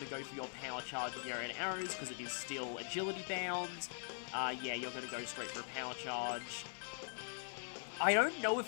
to go for your power charge with your arrows, because it is still agility bound. Yeah, you're going to go straight for a power charge. I don't know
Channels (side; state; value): right; silent; digital silence